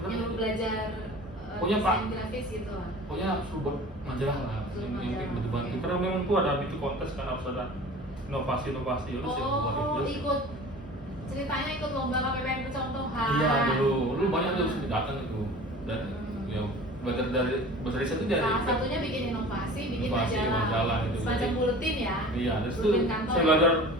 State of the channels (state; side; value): normal; both; correlation 0.41